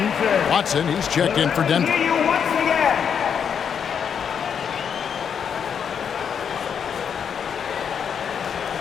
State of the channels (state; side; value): quieter; right; 7.5 dB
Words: Watson, he's checked in for Denver.